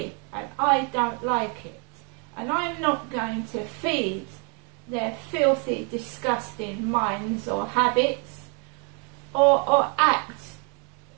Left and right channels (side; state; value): left; quieter; 37.2 dB